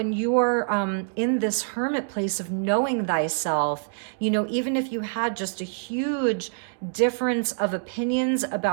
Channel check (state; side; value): silent; left; digital silence